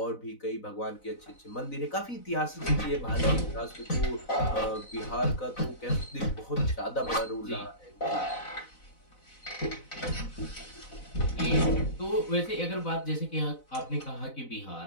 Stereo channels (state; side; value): late; right; 4.0 ms